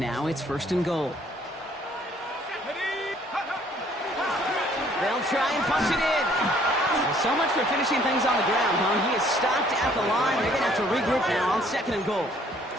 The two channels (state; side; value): normal; both; correlation 0.61